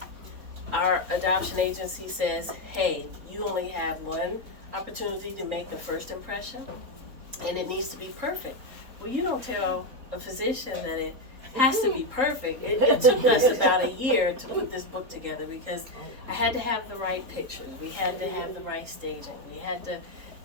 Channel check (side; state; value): left; late; 3.8 ms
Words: Our adoption agency says, hey, you only have one opportunity to make the first impression, and it needs to be perfect. Well, you don't tell a physician that it has to be perfect. It took us about 1 year to put this book together because I had to have the right pictures. We had to have the right staging. We had to,